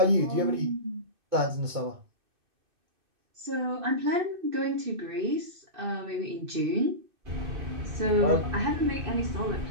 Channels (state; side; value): late; left; 2.6 ms